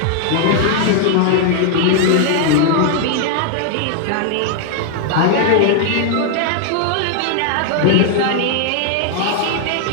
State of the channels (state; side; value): different; both; correlation 0.00